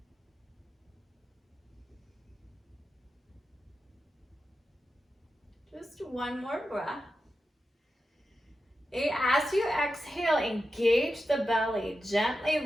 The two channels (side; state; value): both; normal; correlation 0.90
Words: Just one more breath. As you exhale, engage the belly.